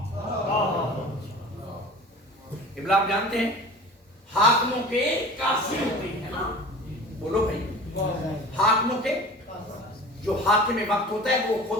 ابلاغ جانتے ہیں حاکموں کے قاضی ہوتے ہیں نا, بولو بھائی, حاکموں کے جو حاکم وقت ہوتا ہے وہ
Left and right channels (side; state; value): both; normal; correlation 0.39